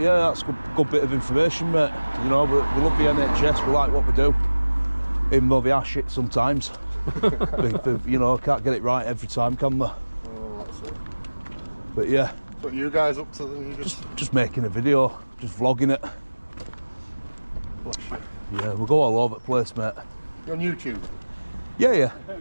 that's good bit of information, mate. You know, we love the NHS. We like what we do, even though they are shit sometimes. You know, can't get it right every time, can we? Oh, that's it. But yeah. What are you guys up to then? Just making a video, just vlogging it. Yeah, we'll go all over the place, mate. You're on YouTube? Yeah.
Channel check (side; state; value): both; inverted; correlation -1.00